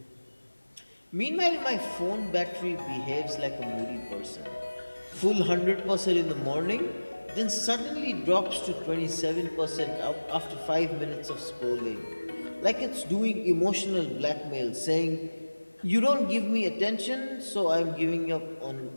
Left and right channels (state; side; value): inverted; both; correlation -1.00